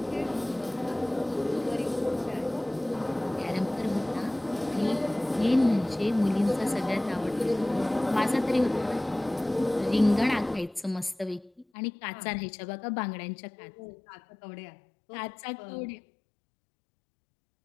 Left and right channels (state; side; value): drops out; right; at 11.7 s